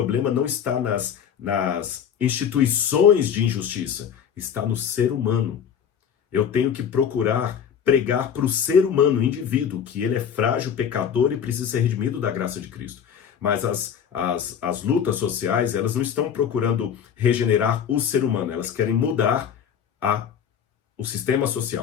não está nas instituições de injustiça, está no ser humano. Eu tenho que procurar pregar para o ser humano, o indivíduo, que ele é frágil, pecador e precisa ser redimido da graça de Cristo. Mas as lutas sociais, elas não estão procurando regenerar o ser humano, elas querem mudar o sistema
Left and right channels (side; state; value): right; quieter; 8.1 dB